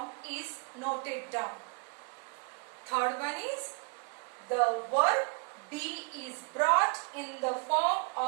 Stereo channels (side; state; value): left; quieter; 35.6 dB